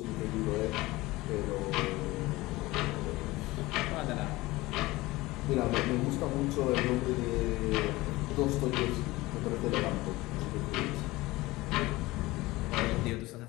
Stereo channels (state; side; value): quieter; right; 20.0 dB